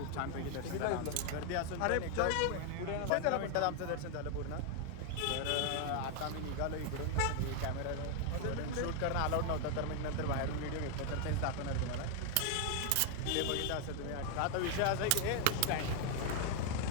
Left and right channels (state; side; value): different; both; correlation 0.00